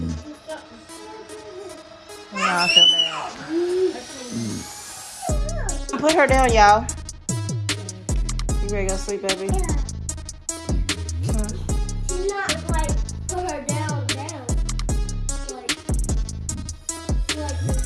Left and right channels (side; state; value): both; identical; correlation 1.00